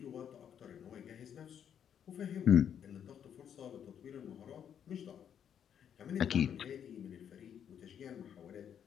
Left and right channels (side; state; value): right; quieter; 8.7 dB